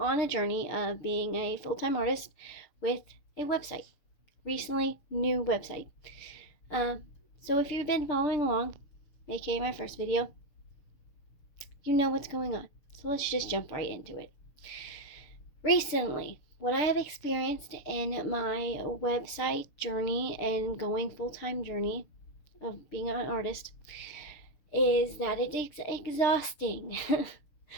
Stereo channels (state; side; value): late; right; 6.7 ms